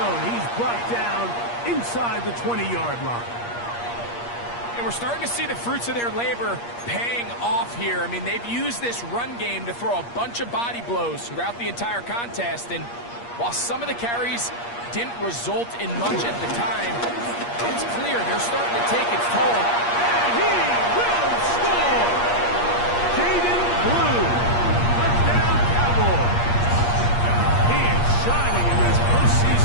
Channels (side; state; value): right; late; 8.5 ms